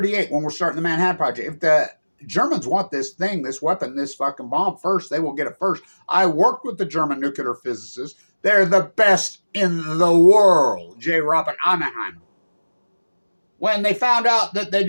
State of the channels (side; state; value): both; inverted; correlation -1.00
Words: when we're starting the Manhattan Project. If the Germans want this thing, this weapon, this fucking bomb first, they will get it first. I worked with the German nuclear physicists. They're the best in the world. J. Robert Oppenheimer. When they found out that they